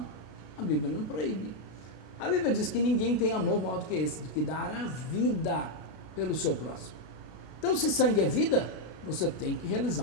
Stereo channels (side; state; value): right; late; 33 ms